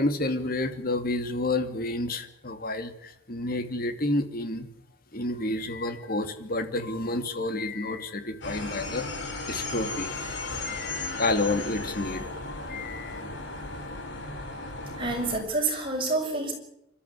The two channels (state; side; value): normal; both; correlation 0.21